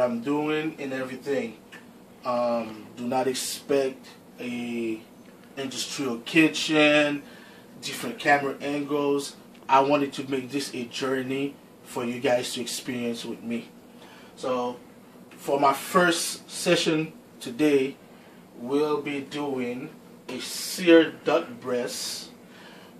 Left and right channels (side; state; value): both; identical; correlation 1.00